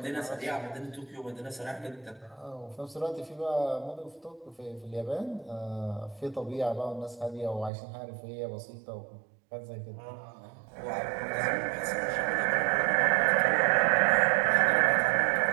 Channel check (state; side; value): drops out; left; at 7.7 s